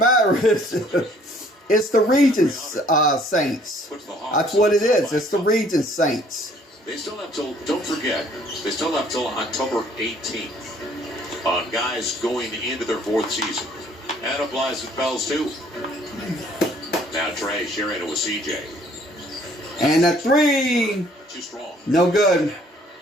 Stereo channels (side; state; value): both; normal; correlation 0.59